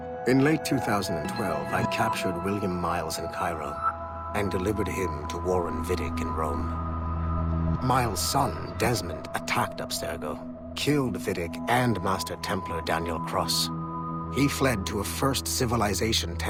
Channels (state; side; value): identical; both; correlation 1.00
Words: In late 2012, I captured William Miles in Cairo and delivered him to Warren Vidic in Rome. Miles' son, Desmond, attacked Abstergo, killed Vidic and Master Templar Daniel Cross. He fled to a First Civilization